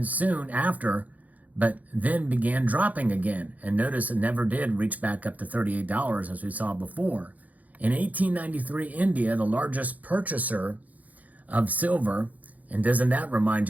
soon after, but then began dropping again. And notice it never did reach back up to $38 as we saw before. In 1893, India, the largest purchaser of silver, and doesn't that remind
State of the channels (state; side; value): late; left; 0.077 ms